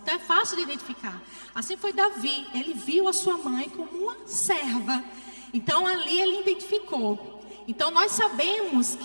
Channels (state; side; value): inverted; both; correlation -1.00